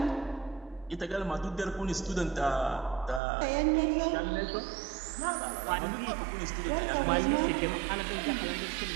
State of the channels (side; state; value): left; drops out; at 3.2 s